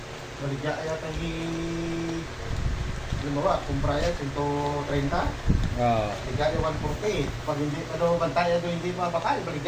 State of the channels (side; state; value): both; identical; correlation 1.00